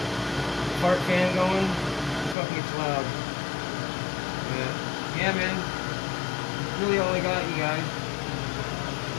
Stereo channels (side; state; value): right; drops out; at 2.4 s